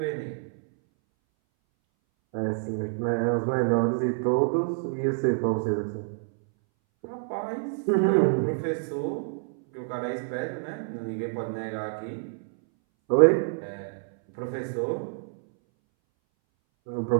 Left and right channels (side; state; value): left; silent; 60 dB below the other